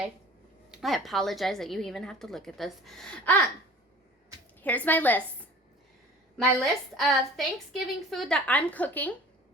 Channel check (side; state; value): both; normal; correlation 0.43